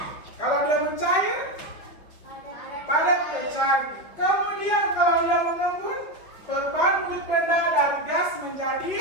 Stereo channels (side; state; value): right; late; 5.8 ms